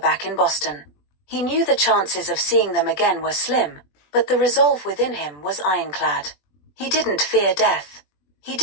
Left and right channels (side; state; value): right; late; 20 ms